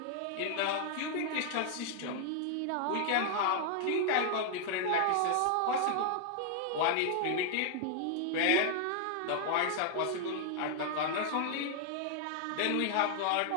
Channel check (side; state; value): both; different; correlation 0.00